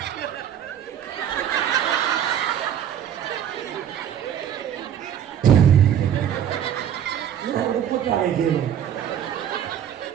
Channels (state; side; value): quieter; left; 9.6 dB